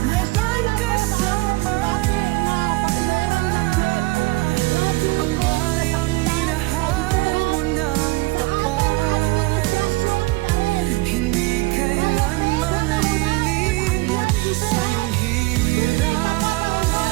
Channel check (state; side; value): quieter; left; 22.1 dB